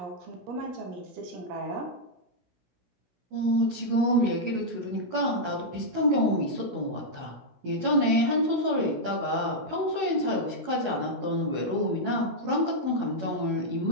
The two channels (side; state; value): left; late; 16 ms